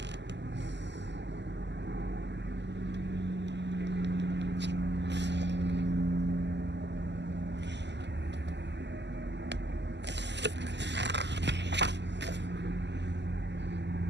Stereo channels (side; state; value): left; late; 0.51 ms